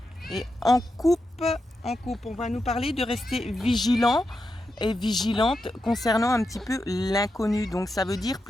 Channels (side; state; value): both; normal; correlation 0.87